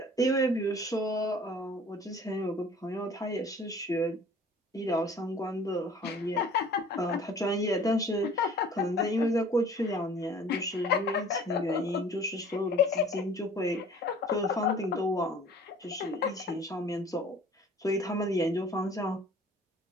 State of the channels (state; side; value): normal; both; correlation 0.49